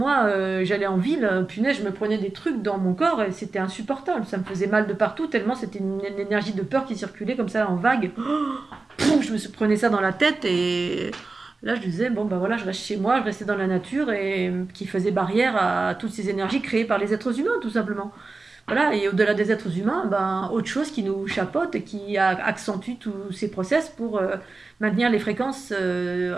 j'allais en ville, punaise, je me prenais des trucs dans mon corps et c'était insupportable. Ça me faisait mal de partout, tellement c'était une énergie de peur qui circulait comme ça en vague. Je me prenais ça dans la tête et là je disais, bon ben voilà, je reste chez moi, je restais dans la nature et qui faisait barrière à toutes ces énergies créées par les êtres humains, tout simplement. Voilà, et au-delà des êtres humains, ben, autre chose qui nous chapeaute et qui accentue tous ces process pour maintenir les fréquences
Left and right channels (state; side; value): quieter; left; 3.7 dB